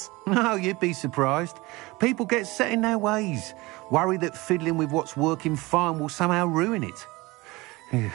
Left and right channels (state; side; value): quieter; left; 22.3 dB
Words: Oh, you'd be surprised. People get set in their ways, worry that fiddling with what's working fine will somehow ruin it.